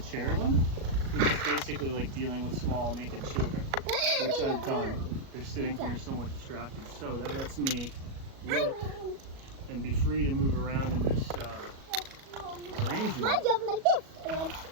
which is basically like dealing with small naked children, which I've done. They're sitting here somewhat distracted. So that lets me look and be free to move around in this arrangement. I jump like this.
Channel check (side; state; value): left; late; 37 ms